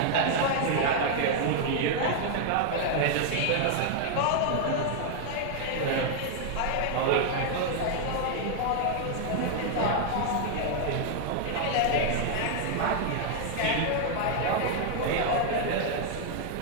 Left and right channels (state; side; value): different; both; correlation 0.00